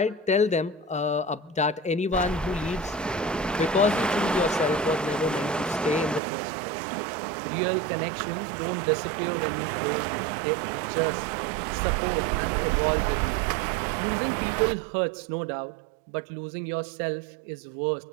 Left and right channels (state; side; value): drops out; left; at 6.2 s